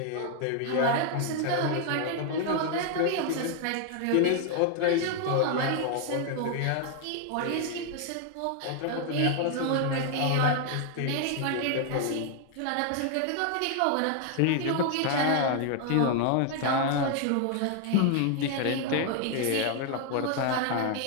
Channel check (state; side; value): different; both; correlation 0.00